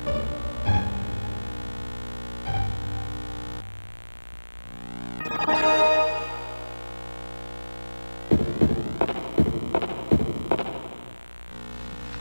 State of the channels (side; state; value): both; inverted; correlation -1.00